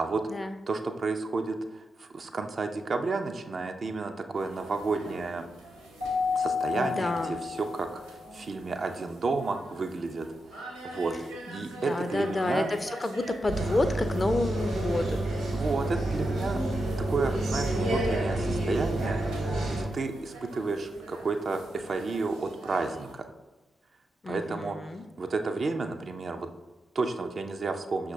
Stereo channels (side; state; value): both; normal; correlation 0.87